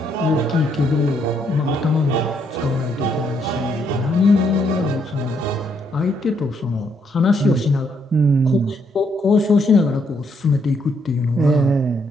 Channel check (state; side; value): normal; both; correlation 0.73